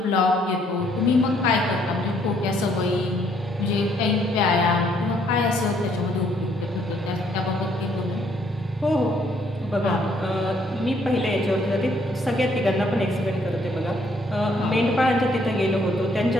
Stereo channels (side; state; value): both; normal; correlation 0.67